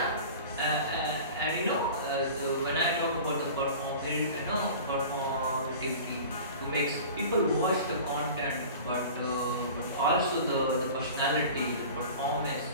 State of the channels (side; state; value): both; inverted; correlation -0.39